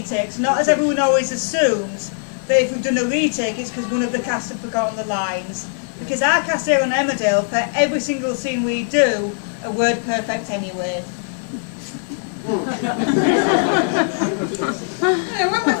Not as everyone always assumes that if we've done a retake it's because one of the cast have forgotten the lines. Because our cast here on Emmerdale, for every single scene we do, are word perfect anyway. When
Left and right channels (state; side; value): silent; right; digital silence